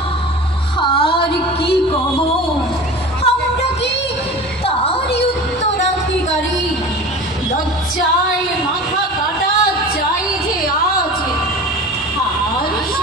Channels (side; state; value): both; normal; correlation 0.36